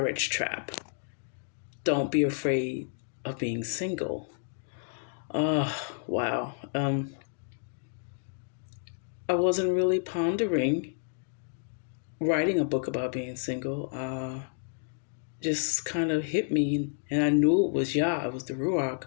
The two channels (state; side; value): silent; right; digital silence